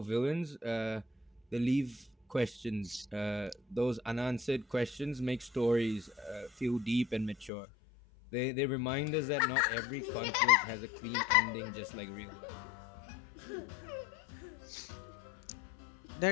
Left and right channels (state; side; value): drops out; right; at 7.5 s